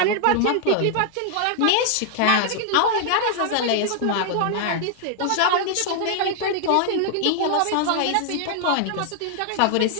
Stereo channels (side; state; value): both; different; correlation 0.00